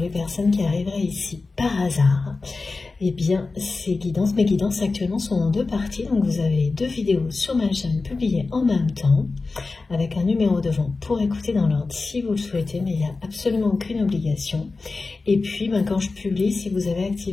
les personnes qui arriveraient ici par hasard, eh bien, mes guidances actuellement sont en deux parties, donc vous avez deux vidéos sur ma chaîne publiées en même temps, avec un numéro devant pour écouter dans l'ordre si vous le souhaitez, mais il n'y a absolument aucune obligation. Et puis, quand je publie, si vous avez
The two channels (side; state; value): right; quieter; 3.8 dB